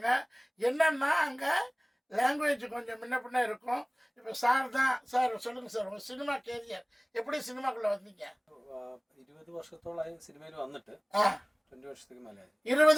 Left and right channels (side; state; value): both; identical; correlation 1.00